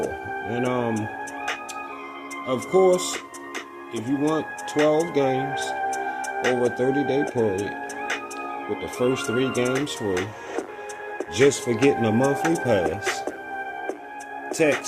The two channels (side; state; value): both; identical; correlation 1.00